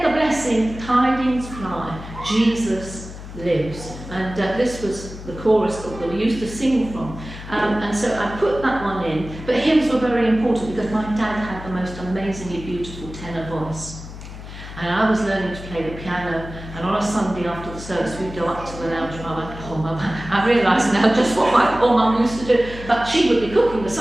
the blessed tidings fly, Jesus lives." And this was the chorus that we used to sing from. And so I put that one in. But hymns were very important because my dad had the most amazingly beautiful tenor voice. And I was learning to play the piano, and on a Sunday after the service we'd go up to the lounge and I went, "Oh Mum," I realise now just what my poor Mum used to do, but she would be cooking the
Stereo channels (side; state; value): left; noise; hum, 12 dB below the sound